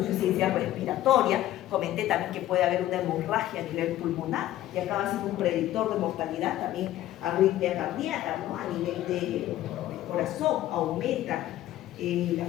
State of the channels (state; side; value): quieter; right; 14.0 dB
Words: respiratoria. Comenté también que puede haber una hemorragia a nivel pulmonar y acaba siendo un predictor de mortalidad, también arritmia cardíaca, ¿no? A nivel de corazón aumenta la